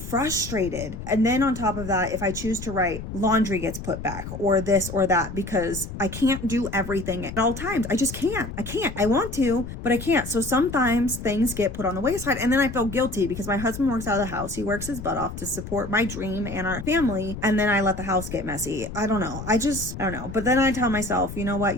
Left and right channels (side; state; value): left; noise; rumble, 9 dB below the sound